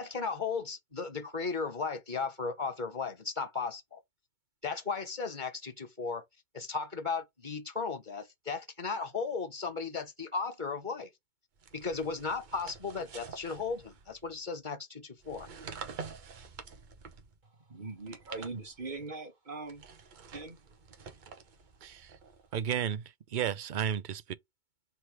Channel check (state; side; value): late; left; 2.2 ms